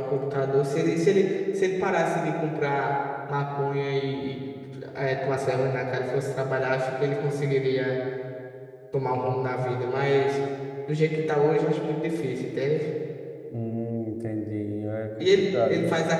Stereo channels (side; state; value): both; identical; correlation 1.00